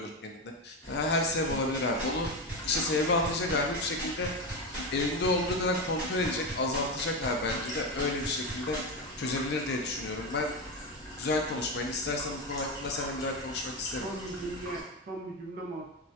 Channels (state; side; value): normal; both; correlation 0.15